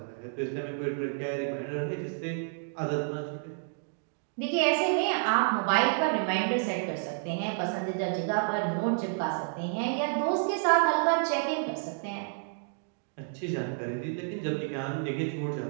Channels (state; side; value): silent; left; digital silence